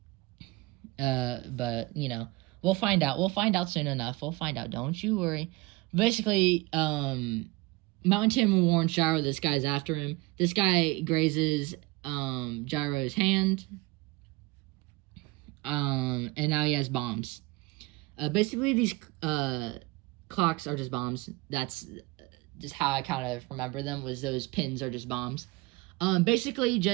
But we'll find out. We'll find out soon enough. We'll find out. Don't you worry. Basically, Mountain Tim warns Gyro this guy's after him. This guy grazes Gyro's hand. And now he has bombs. Basically, these clocks are just bombs. That's just how I kind of remember them, was those pins are just bombs. Basically,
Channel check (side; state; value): left; quieter; 22.1 dB